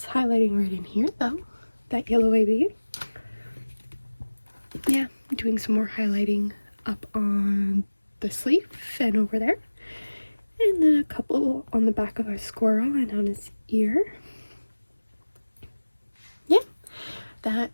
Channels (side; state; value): both; inverted; correlation -1.00